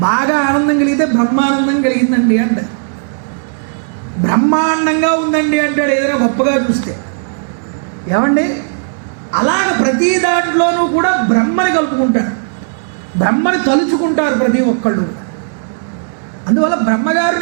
బాగా ఆనందం కలిగితే బ్రహ్మానందం కలిగిందండి అంట. బ్రహ్మాండంగా ఉందండి అంటాడు ఏదైనా గొప్పగా చూస్తే. ఏమండి, అలాగ ప్రతి దాంట్లోనూ కూడా బ్రహ్మని కలుపుకుంటారు, బ్రహ్మని తలుచుకుంటారు ప్రతి ఒక్కళ్ళు. అందువల్ల బ్రహ్మగారు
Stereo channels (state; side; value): silent; left; digital silence